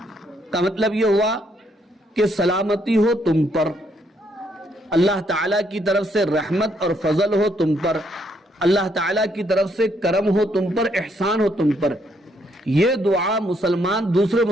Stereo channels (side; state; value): both; normal; correlation 0.72